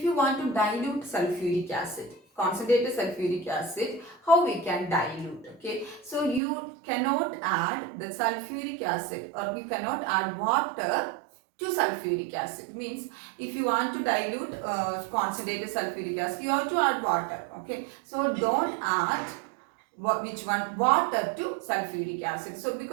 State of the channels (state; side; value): drops out; left; at 6.4 s